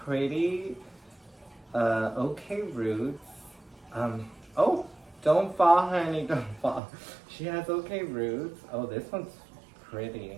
okay roots. Oh, don't fall, honey, don't fall. She has okay roots. Oh, this one's pretty.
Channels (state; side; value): drops out; left; at 6.8 s